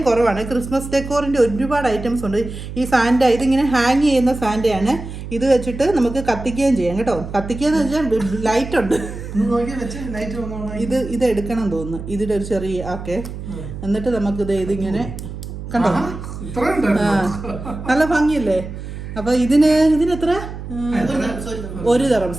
കുറവാണ്. ക്രിസ്മസ് ഡെക്കോറിൻ്റെ ഒരുപാട് ഐറ്റംസ് ഉണ്ട്. ഈ സാൻഡ, ഇതിങ്ങനെ ഹാങ് ചെയ്യുന്ന സാൻഡയാണ്. ഇത് വെച്ചിട്ട് നമുക്ക് കത്തിക്കുകയും ചെയ്യാം കേട്ടോ. കത്തിക്കുകയെന്ന് വെച്ചാൽ ലൈറ്റ് ഉണ്ട്. ഇത് എടുക്കണം തോന്നുന്നു, ഇതിൻ്റെ ഒരു ചെറിയ ഓക്കെ. എന്നിട്ട് നമുക്കിത് ഇതിങ്ങനെ കണ്ടോ, നല്ല ഭംഗിയല്ലേ. അപ്പൊ ഇതിനെത്ര? 1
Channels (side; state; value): right; noise; hum, 9 dB below the sound